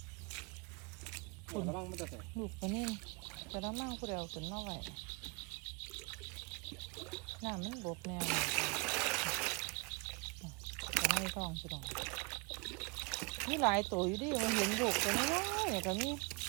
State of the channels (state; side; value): quieter; left; 30.2 dB